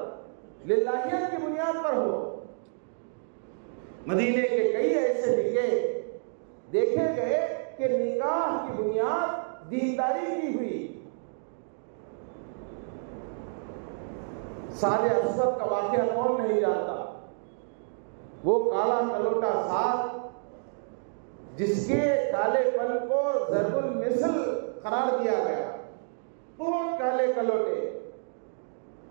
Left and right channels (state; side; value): silent; left; digital silence